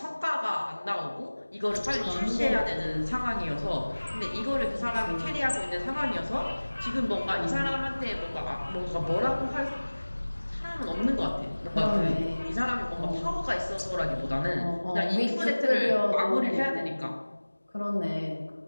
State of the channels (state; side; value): inverted; both; correlation -1.00